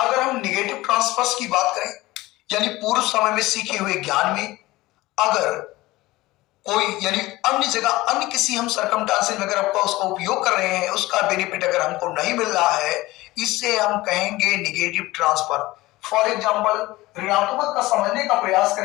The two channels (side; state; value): right; quieter; 19.1 dB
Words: हम निगेटिव ट्रांसफर्स की बात करें, यानी पूर्व समय में सीखे हुए ज्ञान में अगर कोई यानी अन्य जगह अन्य किसी हम सरकमस्टेंसेस में अगर आपका उसका उपयोग कर रहे हैं, उसका बेनिफिट अगर हमको नहीं मिल रहा है, इससे हम कहेंगे निगेटिव ट्रांसफर। फॉर एग्जांपल, ऋणात्मक का समझने का प्रयास